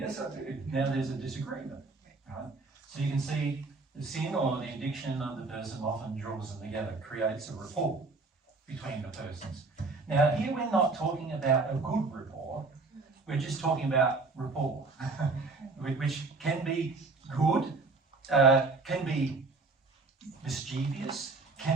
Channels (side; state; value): left; quieter; 3.8 dB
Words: I do. Now there's a disagreement, right? So you can see the sin or the addiction of the person often draws them together, creates a rapport between the persons. Now here we're not talking about a good rapport, we're just talking about rapport, which can be good, can be mischievous,